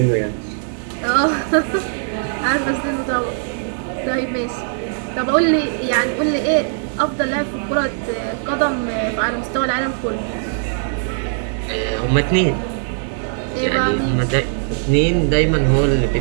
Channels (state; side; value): silent; left; 66 dB below the other